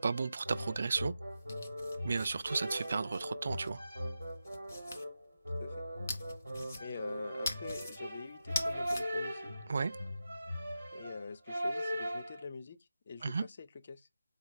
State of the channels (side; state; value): both; inverted; correlation -0.91